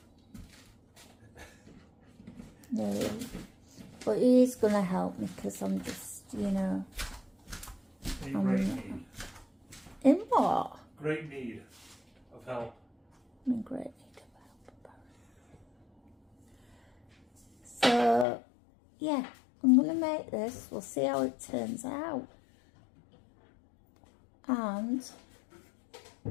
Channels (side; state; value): right; drops out; at 18.2 s